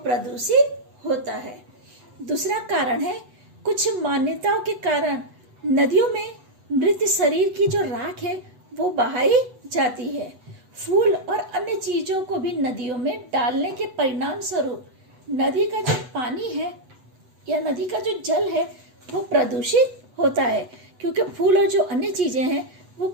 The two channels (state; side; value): late; left; 8.1 ms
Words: होता है। दूसरा कारण है कुछ मान्यताओं के कारण नदियों में मृत शरीर की जो राख है वो बहाई जाती है। फूल और अन्य चीजों को भी नदियों में डालने के परिणाम स्वरूप नदी का जो पानी है या नदी का जो जल है वो प्रदूषित होता है, क्योंकि फूल और जो अन्य चीजें हैं वो